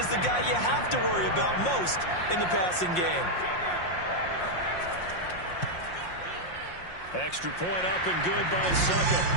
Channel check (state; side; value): late; right; 5.6 ms